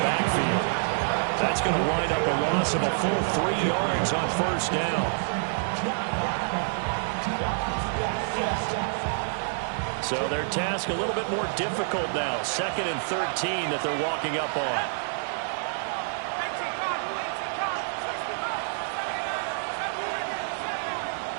backfield. That's going to wind up a loss of a full 3 yards on 1st down. So their task a little bit more difficult now. 2nd and 13 that they're walking up on.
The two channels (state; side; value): silent; left; digital silence